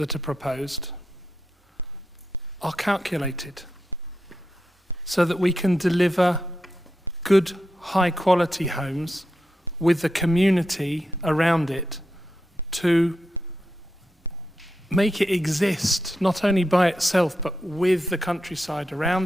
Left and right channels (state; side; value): normal; both; correlation 0.87